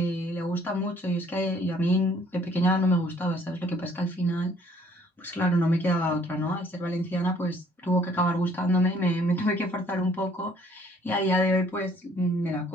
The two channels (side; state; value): both; normal; correlation 0.60